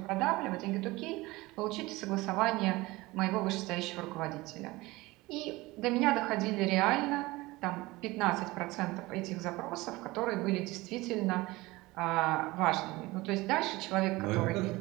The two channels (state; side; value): quieter; left; 20.9 dB